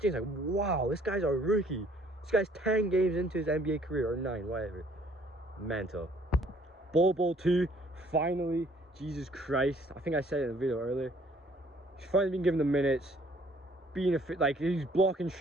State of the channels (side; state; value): both; normal; correlation 0.60